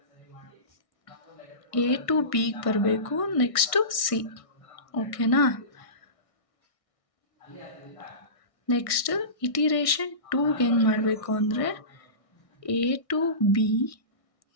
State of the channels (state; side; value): late; right; 1.6 ms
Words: A to Bಗೆ ಬರಬೇಕು, ನೆಕ್ಸ್ಟು C, ಓಕೆನಾ. ನೆಕ್ಸ್ಟ್ ಇಟಿರೇಷನ್ 2ಗೆ ಹೆಂಗೆ ಮಾಡಬೇಕು ಅಂದರೆ A to B,